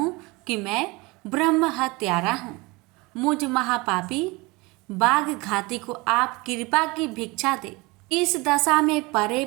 कि मैं ब्रह्म हत्यारा हूँ। मुझ महापापी बाघ घाती को आप कृपा की भिक्षा दे। इस दशा में परे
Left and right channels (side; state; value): left; quieter; 24.5 dB